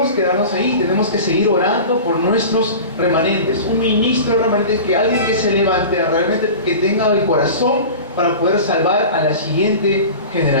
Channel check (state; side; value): inverted; both; correlation -0.34